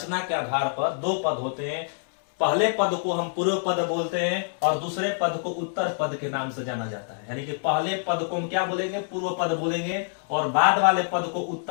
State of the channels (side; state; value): right; silent; digital silence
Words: के आधार पर दो पद होते हैं। पहले पद को हम पूर्व पद बोलते हैं और दूसरे पद को उत्तर पद के नाम से जाना जाता है। यानी कि पहले पद को हम क्या बोलेंगे, पूर्व पद बोलेंगे, और बाद वाले पद को